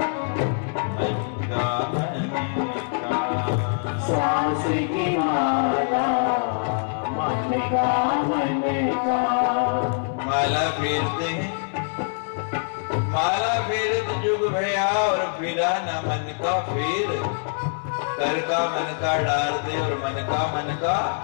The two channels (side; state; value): right; silent; digital silence